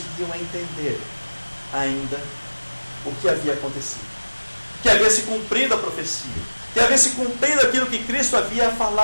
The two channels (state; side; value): inverted; both; correlation -1.00